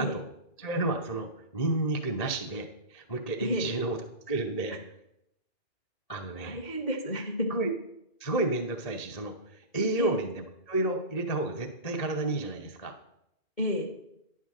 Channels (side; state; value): right; late; 1.8 ms